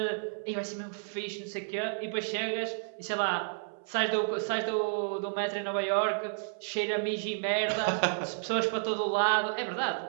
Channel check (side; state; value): left; silent; 57 dB below the other